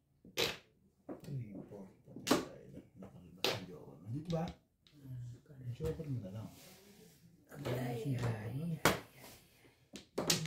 Dito ba? Joker mo na lang.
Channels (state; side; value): identical; both; correlation 1.00